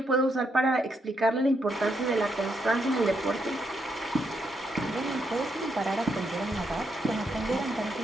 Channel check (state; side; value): normal; both; correlation 0.78